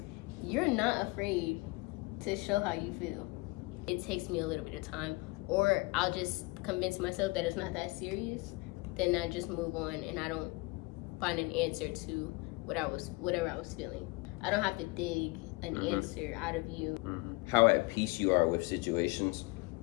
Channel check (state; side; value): quieter; right; 24.7 dB